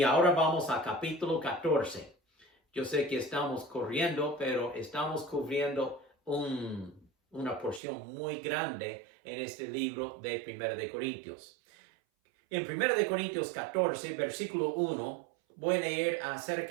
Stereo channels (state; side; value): drops out; left; at 7.8 s